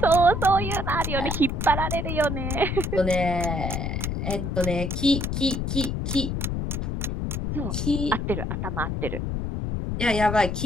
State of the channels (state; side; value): noise; left; rumble, 2 dB below the sound